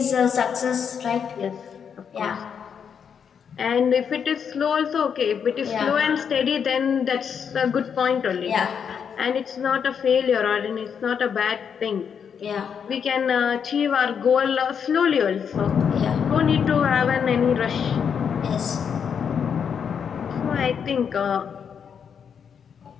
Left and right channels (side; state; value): right; quieter; 7.2 dB